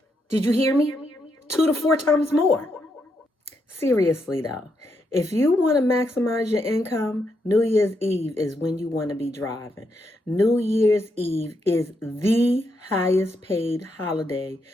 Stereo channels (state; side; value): normal; both; correlation 0.80